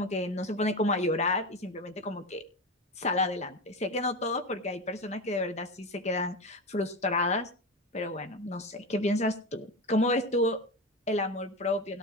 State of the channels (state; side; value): normal; both; correlation 0.21